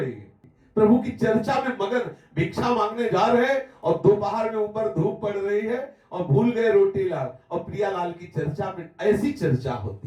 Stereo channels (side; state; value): both; identical; correlation 1.00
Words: है। प्रभु की चर्चा में मगन, भिक्षा मांगने जा रहे हैं और दोपहर में ऊपर धूप पड़ रही है और भूल गए रोटी लाल और प्रियालाल की चर्चा में। ऐसी चर्चा